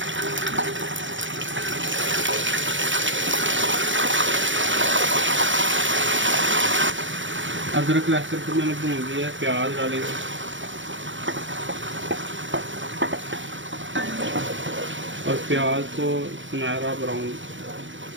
अदरक लहसुन को मैंने भून लिया है। प्याज डालेंगे, और प्याज को सुनहरा ब्राउन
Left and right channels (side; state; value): left; late; 0.56 ms